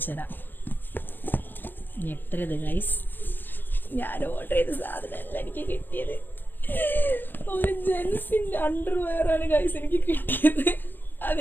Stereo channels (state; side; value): late; right; 0.093 ms